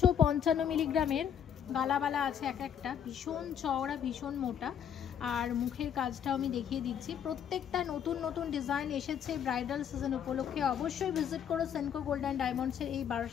মিলিগ্রামের গালাবালা আছে এক একটা, ভীষণ চওড়া ভীষণ মোটা, আর মুখের কাজটাও আমি দেখিয়ে দিচ্ছি। প্রত্যেকটা নতুন নতুন ডিজাইন এসেছে ব্রাইডাল সিজন উপলক্ষে। অবশ্যই ভিজিট করো সেনকো গোল্ড অ্যান্ড ডায়মন্ডসের এই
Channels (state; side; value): quieter; right; 8.7 dB